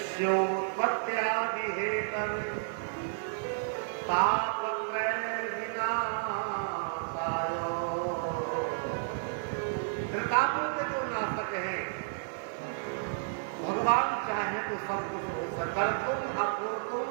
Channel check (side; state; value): left; silent; 57 dB below the other